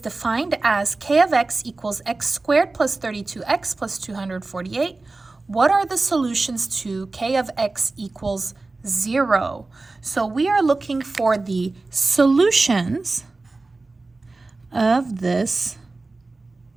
as k of x equals x squared plus 32x plus 248. What are the solutions to k of x equals 0? So we are looking for the solutions of this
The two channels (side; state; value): left; quieter; 3.4 dB